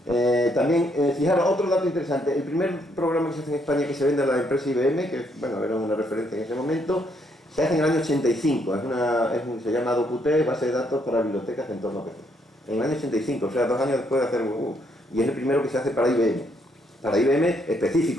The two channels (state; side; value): normal; both; correlation 0.72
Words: También, fijaros, otro dato interesante, el primer programa que se hace en España que se vende a la empresa IBM, que bueno, era una referencia en ese momento, se hace en el año 85, se llama DocuT, base de datos para bibliotecas de entorno PC. En el año 85, o sea, 2 años después de hacer y es el primero que se hace para IBM. Para IBM